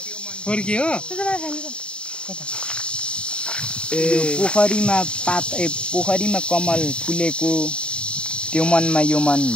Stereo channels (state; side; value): late; right; 0.054 ms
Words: फोर्की हो पोखरीमा कमल फुलेको त्यो मनमा यो मन